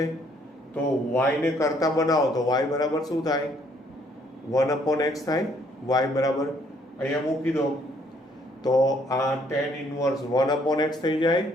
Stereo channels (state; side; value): normal; both; correlation 0.66